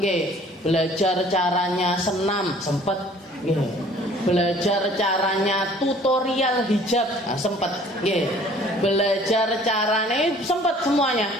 belajar caranya senam sempat, belajar caranya tutorial hijab sempat, belajar caranya sempat semuanya,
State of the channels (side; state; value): both; normal; correlation 0.53